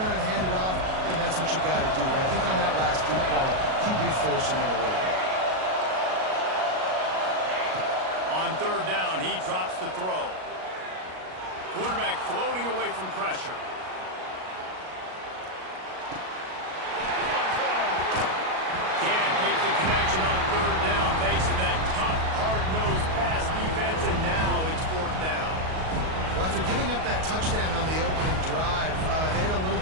and hand it off, then that's what you got to do. But I think on that last deep ball, QB forcing it a little bit. On 3rd down, he drops to throw. Quarterback floating away from pressure. Can't make the connection on 3rd down thanks to that tough, hard-nosed pass defense, and now it's 4th down. Well, after giving up that touchdown on the opening drive, they had a little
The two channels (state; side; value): late; left; 38 ms